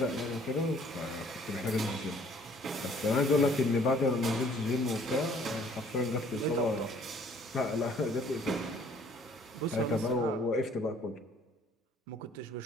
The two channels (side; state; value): both; normal; correlation 0.58